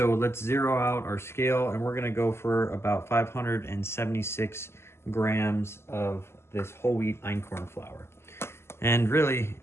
let's zero out our scale, and we're gonna go for about 576 grams of this whole wheat einkorn flour. And really,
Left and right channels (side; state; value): right; late; 0.12 ms